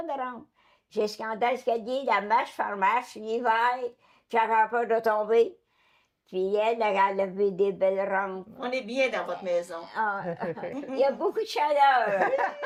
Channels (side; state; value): both; identical; correlation 1.00